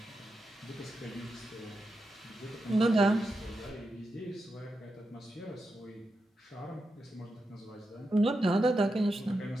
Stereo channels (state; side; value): normal; both; correlation 0.87